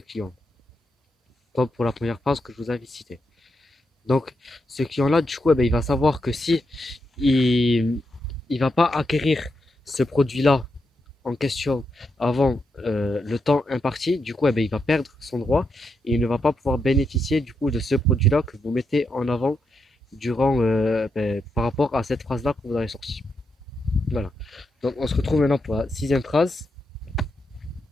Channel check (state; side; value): normal; both; correlation 0.83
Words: client, comme pour la première phrase que je vous avais citée. Donc, ce client-là, du coup, eh ben, il va savoir que si il ne va pas acquérir ce produit-là en question avant le temps imparti, du coup, eh ben, il va perdre son droit et il ne va pas pouvoir bénéficier du coup de ce produit-là que vous mettez en avant durant, par rapport à cette phrase-là que vous avez sortie. Voilà. Donc, on se retrouve maintenant pour la sixième phrase.